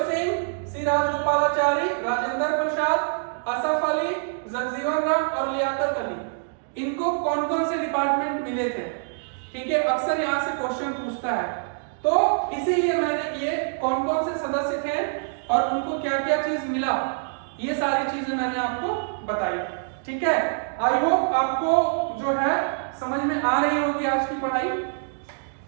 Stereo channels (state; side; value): silent; left; digital silence